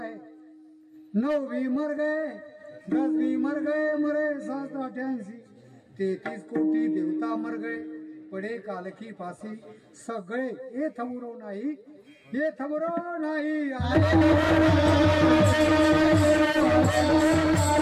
9 मर गए, 10 मर गए, मरे 788. 33 कोटी देवता मर गए, पडे काल की फासी. सगळे हे थबुरो नाही, हे थबुरो नाही.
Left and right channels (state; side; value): identical; both; correlation 1.00